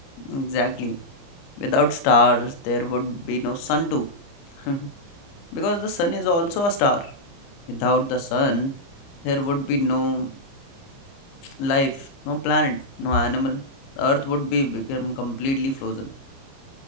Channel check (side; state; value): right; late; 29 ms